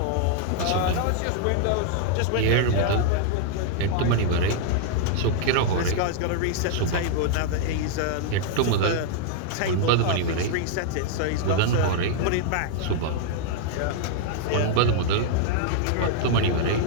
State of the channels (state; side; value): different; both; correlation -0.01